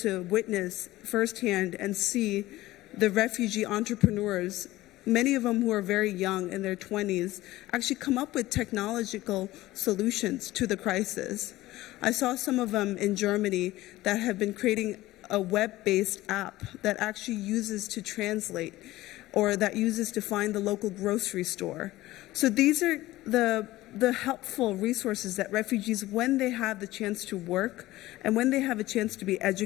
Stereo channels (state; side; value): quieter; right; 17.2 dB